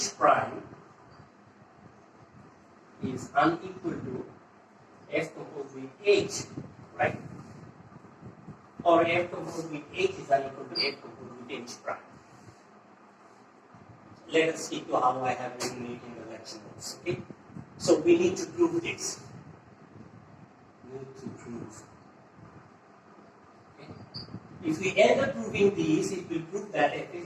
prime is unequal to f composed with H, right? Or f composed with H is unequal to f composed with H prime. Let us stick to how I have written it in the lecture notes. Okay? So we need to prove this. Okay? If we end up proving these, it will prove that f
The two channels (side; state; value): both; identical; correlation 1.00